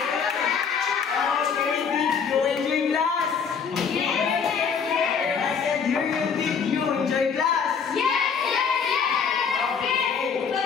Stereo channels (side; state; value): right; quieter; 6.3 dB